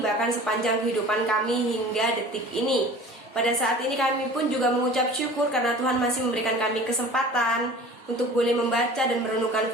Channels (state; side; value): normal; both; correlation 0.42